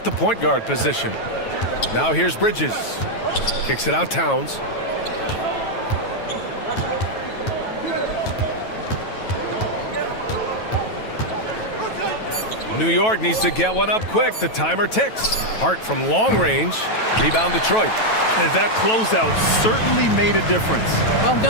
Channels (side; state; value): right; late; 9.2 ms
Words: the point guard position. Now here's Bridges. Kicks it out Towns. New York needs to get one up quick. The timer ticks. Hart from long range. Rebound Detroit. And that closeout certainly made a difference. Well,